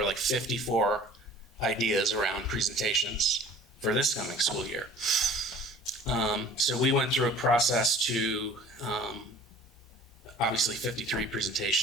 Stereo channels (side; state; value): both; normal; correlation 0.48